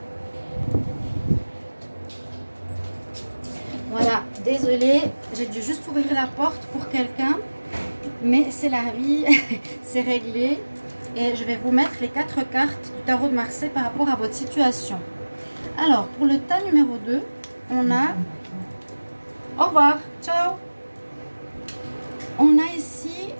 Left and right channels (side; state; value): both; inverted; correlation -1.00